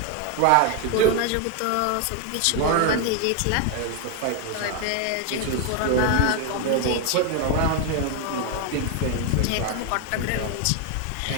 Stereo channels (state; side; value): different; both; correlation 0.01